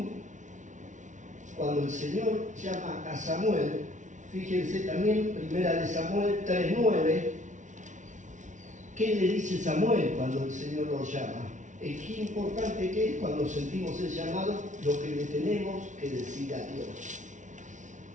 cuando el Señor llama a Samuel, fíjense también, 1 Samuel 3:9, ¿qué le dice Samuel cuando el Señor lo llama? Qué importante que es cuando sentimos el llamado, lo que le tenemos que decir a Dios.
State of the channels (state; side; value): late; left; 0.36 ms